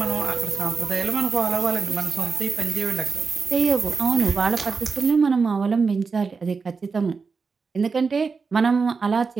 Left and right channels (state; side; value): quieter; left; 4.9 dB